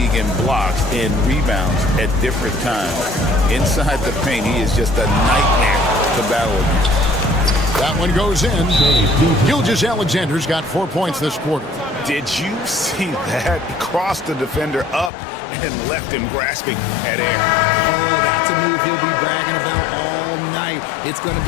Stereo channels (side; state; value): right; drops out; at 15.1 s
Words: in blocks and rebounds at different times. Inside the paint, he is just a nightmare to battle against. That one goes in. Gilgeous-Alexander's got 4 points this quarter. Did you see that? Crossed the defender up and left him grasping at air. Oh, that's a move he'll be bragging about all night. It's going to